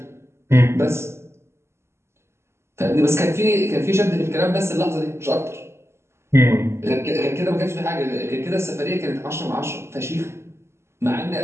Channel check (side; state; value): left; late; 0.13 ms